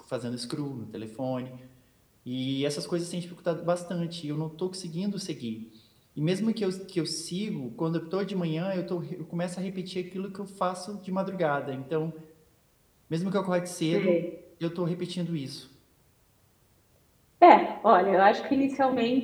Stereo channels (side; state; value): both; identical; correlation 1.00